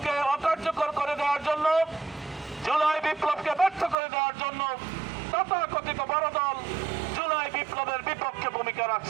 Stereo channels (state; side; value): drops out; left; at 4.0 s